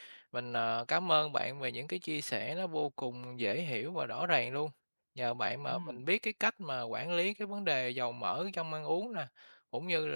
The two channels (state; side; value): inverted; both; correlation -1.00